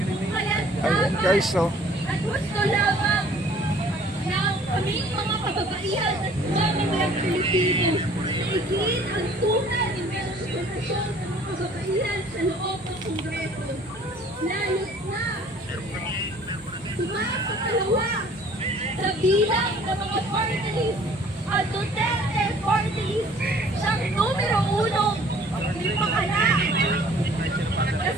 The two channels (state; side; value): normal; both; correlation 0.54